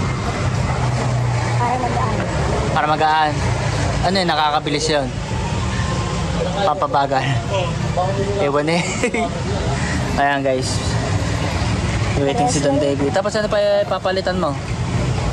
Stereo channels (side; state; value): both; identical; correlation 1.00